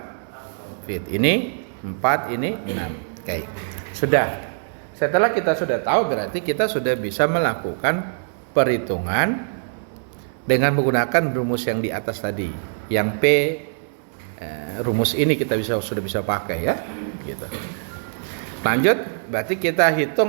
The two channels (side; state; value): left; silent; digital silence